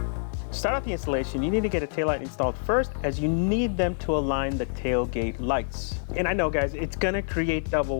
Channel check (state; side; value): silent; right; digital silence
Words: To start out the installation, you need to get a taillight installed first, as you need them to align the tailgate lights. And I know, guys, it's gonna create